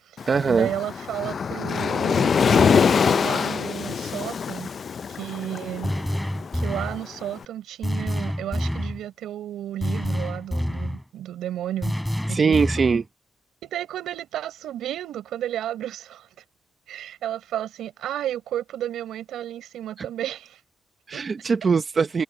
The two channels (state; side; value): normal; both; correlation 0.79